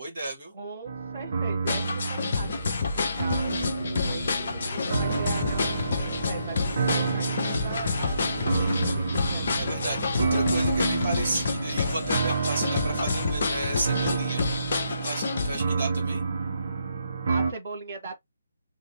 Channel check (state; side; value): inverted; both; correlation -0.77